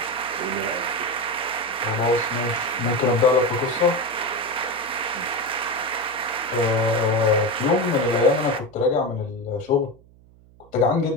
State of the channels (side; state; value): right; noise; hum, 27 dB below the sound